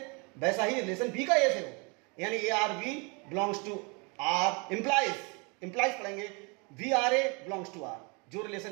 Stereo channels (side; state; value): left; quieter; 31.1 dB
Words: वैसा ही रिलेशन बी का ए से हो, यानी a R B belongs to R implies पढ़ेंगे b R A belongs to R. जो